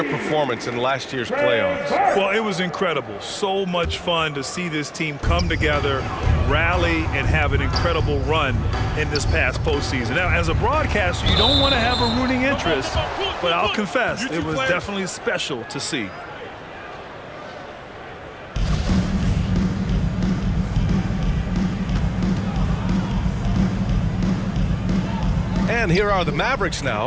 performance in last year's playoffs? Well, it was incredible. So much fun to see this team come together, rally, and have an incredible run in this past postseason. Now, as a broadcaster, you don't want to have a rooting interest, but I'll confess, it was definitely special to see. And here are the Mavericks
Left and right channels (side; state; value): both; identical; correlation 1.00